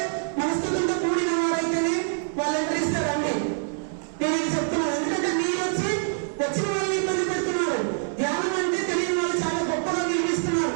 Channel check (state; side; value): silent; left; digital silence